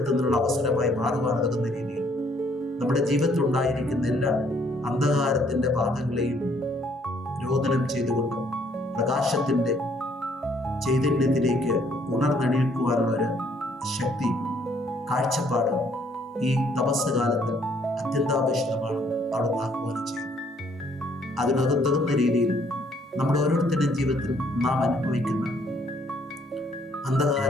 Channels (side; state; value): both; normal; correlation 0.65